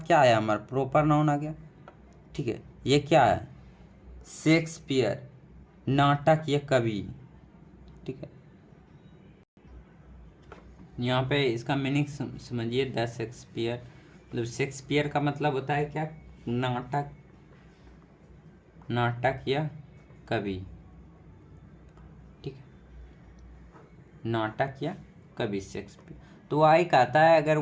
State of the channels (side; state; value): both; identical; correlation 1.00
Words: क्या आया, हमारा प्रॉपर नाउन आ गया, ठीक है। ये क्या है, शेक्सपियर, नाटक या कवि, ठीक है। यहाँ पे इसका मीनिंग समझिए, द शेक्सपियर, मतलब शेक्सपियर का मतलब होता है क्या, नाटक, नाटक या कवि, ठीक है, नाटक या कवि शेक्सपियर। तो आई कहता है अगर